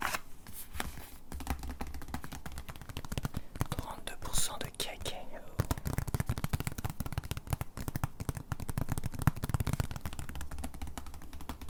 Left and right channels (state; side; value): identical; both; correlation 1.00